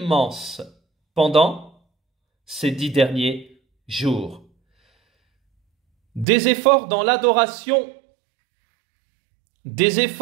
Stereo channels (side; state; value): left; drops out; at 6.2 s